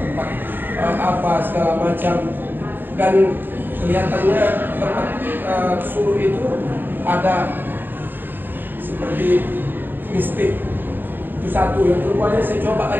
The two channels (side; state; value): left; late; 0.093 ms